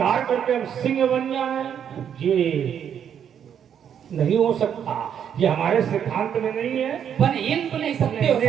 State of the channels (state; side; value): quieter; left; 8.6 dB